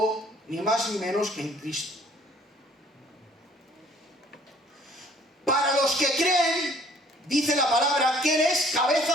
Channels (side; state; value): both; normal; correlation 0.57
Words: ni más ni menos que en Cristo. Para los que creen, dice la palabra, que Él es